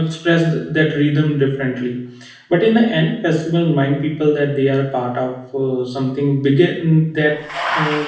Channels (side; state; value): both; identical; correlation 1.00